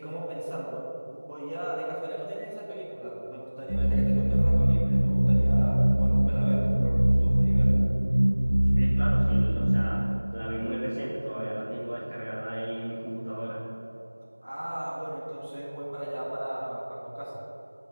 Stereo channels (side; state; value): both; inverted; correlation -1.00